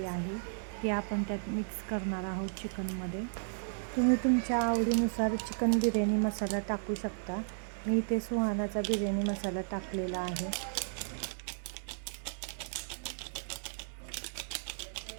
आहे, ती आपण त्यात मिक्स करणार आहोत चिकनमध्ये. तुम्ही तुमच्या आवडीनुसार चिकन बिर्याणी मसाला टाकू शकता. मी इथे सुहानाचा बिर्याणी मसाला टाकलेला आहे.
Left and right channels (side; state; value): left; silent; 55 dB below the other